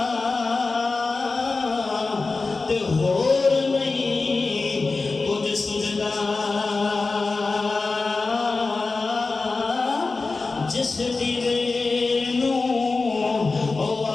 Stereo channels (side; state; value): right; quieter; 3.8 dB